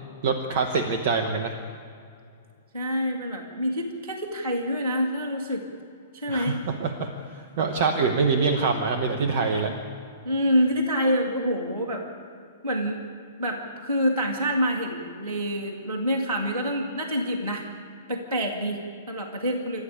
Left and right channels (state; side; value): inverted; both; correlation -0.56